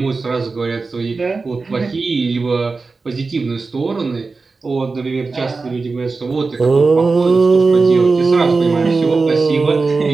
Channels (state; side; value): quieter; left; 4.1 dB